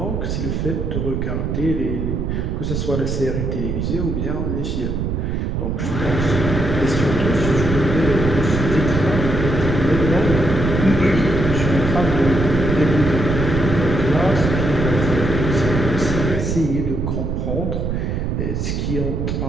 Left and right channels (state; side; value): noise; right; rumble, 1 dB below the sound